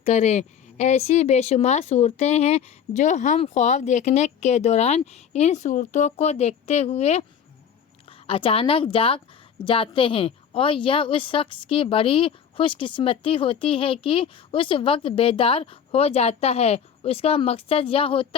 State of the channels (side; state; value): right; quieter; 7.9 dB